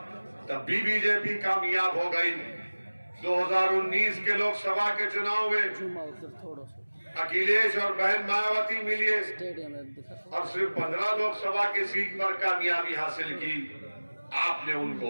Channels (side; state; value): both; inverted; correlation -1.00